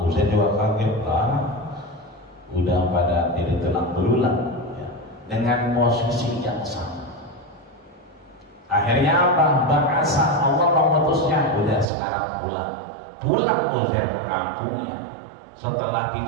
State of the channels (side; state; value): left; drops out; at 11.9 s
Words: Uzair juga kaget lah, udah pada jadi tulang belulang ya, dengan posisi yang sama. Akhirnya apa? Bahasa Allah mengutusnya, udah sekarang pulang Uzair ke kampungnya. Setelah